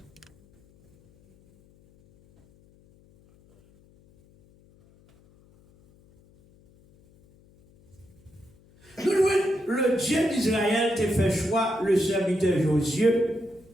le Dieu d'Israël te fait choix, le serviteur Josué,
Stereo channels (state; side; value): noise; left; hum, 29 dB below the sound